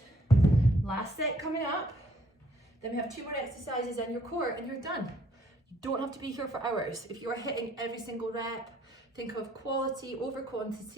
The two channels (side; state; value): both; normal; correlation 0.65